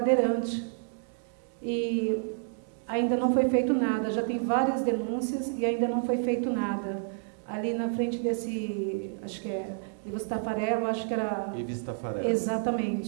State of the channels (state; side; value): silent; left; digital silence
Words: e ainda não foi feito nada. Já tem várias denúncias e ainda não foi feito nada. Ali na frente desse, acho que é Ivo Tafarello, acho que era... Ivo Tafarello.